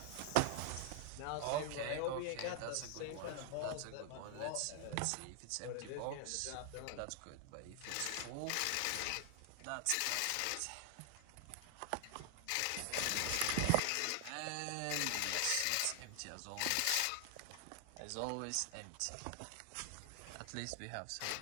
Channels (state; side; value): different; both; correlation 0.00